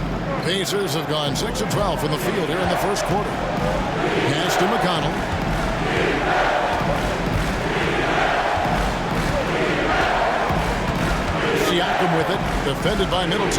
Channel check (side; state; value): both; identical; correlation 1.00